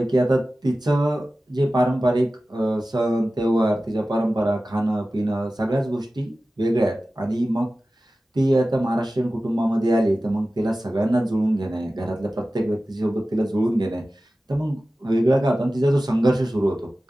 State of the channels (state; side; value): normal; both; correlation 0.95